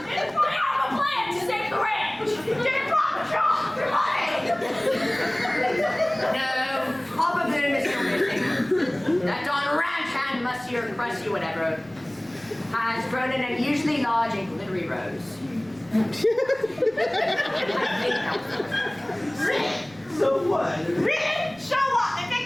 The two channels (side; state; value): right; noise; rumble, 27 dB below the sound